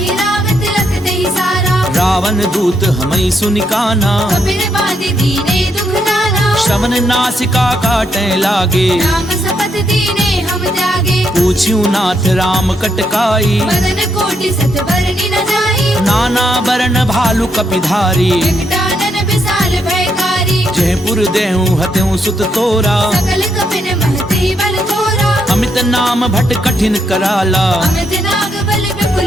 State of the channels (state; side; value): normal; both; correlation 0.78